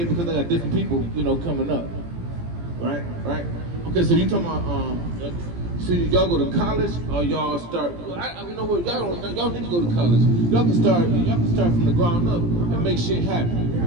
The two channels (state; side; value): late; left; 17 ms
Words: because I got different people, coming up. Right? Okay, so you talking about so y'all go to college or y'all start? You know what? Y'all need to go to college. Y'all can start from the ground up and make shit happen.